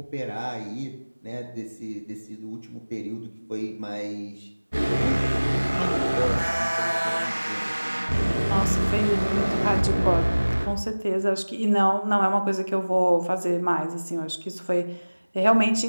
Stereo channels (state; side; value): inverted; both; correlation -1.00